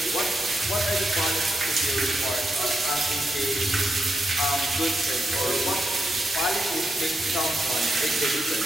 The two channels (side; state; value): both; normal; correlation 0.84